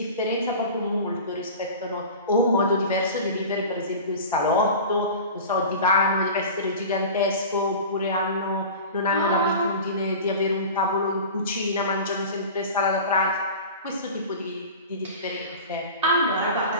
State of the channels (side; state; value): both; inverted; correlation -0.35